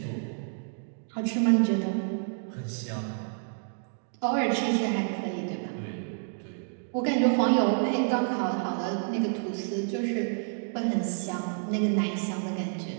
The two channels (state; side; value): silent; left; digital silence